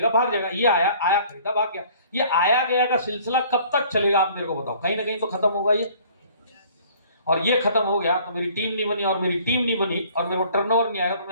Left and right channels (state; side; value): inverted; both; correlation -0.54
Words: भाग जाएगा। ये आया, आया, खरीदा, भाग गया। ये आया गया का सिलसिला कब तक चलेगा आप मेरे को बताओ? कहीं ना कहीं तो खत्म होगा ये। और ये खत्म हो गया तो मेरी टीम नहीं बनी, और मेरी टीम नहीं बनी और मेरे को टर्नओवर नहीं आएगा, तो